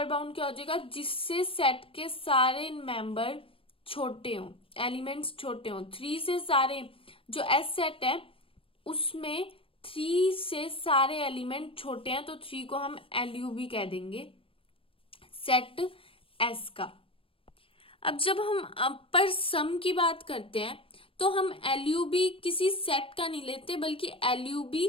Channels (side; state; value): right; late; 0.26 ms